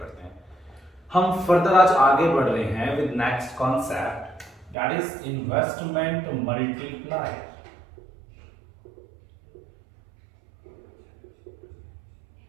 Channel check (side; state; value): left; drops out; at 4.8 s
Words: हैं। हम फर्दर आज आगे बढ़ रहे हैं with next concept that is investment multiplier.